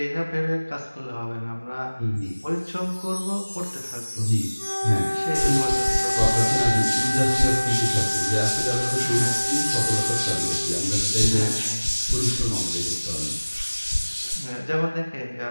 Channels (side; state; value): both; inverted; correlation -1.00